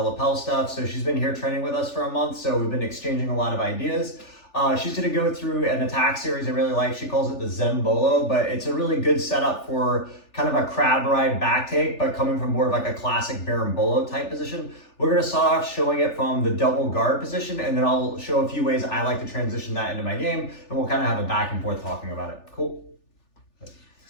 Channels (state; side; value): late; right; 3.4 ms